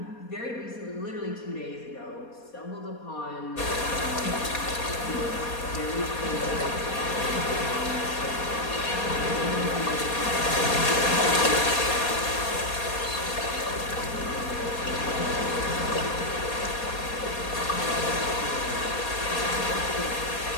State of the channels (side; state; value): right; late; 4.2 ms